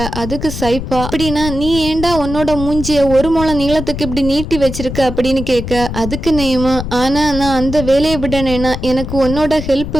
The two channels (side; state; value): left; noise; rumble, 7 dB below the sound